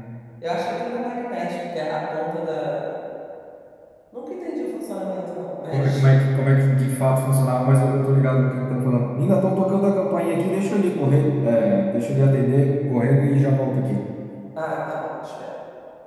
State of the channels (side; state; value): both; identical; correlation 1.00